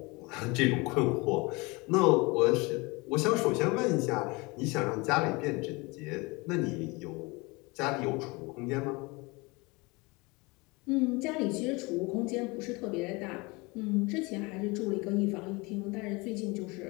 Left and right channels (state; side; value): quieter; right; 25.7 dB